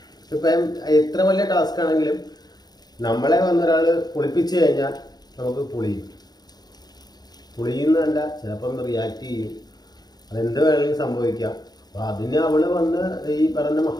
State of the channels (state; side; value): late; right; 0.19 ms